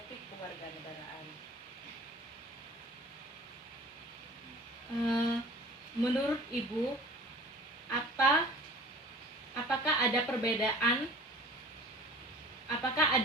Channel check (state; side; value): normal; both; correlation 0.45